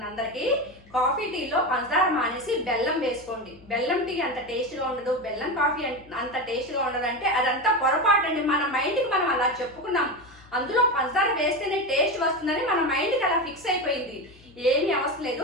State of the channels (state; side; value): noise; left; hum, 25 dB below the sound